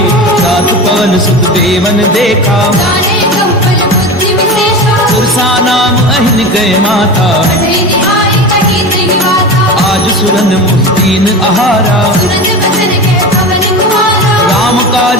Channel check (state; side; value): normal; both; correlation 0.28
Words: सात पवन सुत देवन देखा सुरसा नाम अहिन गए माता आज सुरन मुस्तीन आहारा राम